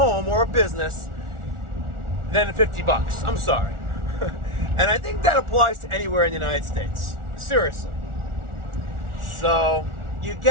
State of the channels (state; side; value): late; left; 1.4 ms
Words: or a business than $50. I'm sorry. And I think that applies to anywhere in the United States. Seriously. So you